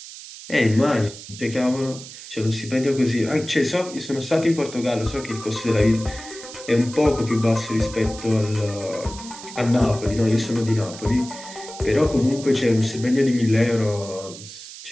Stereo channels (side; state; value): right; noise; hiss, 14 dB below the sound